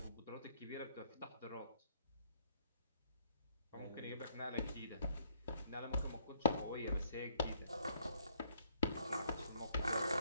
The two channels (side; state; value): both; inverted; correlation -0.69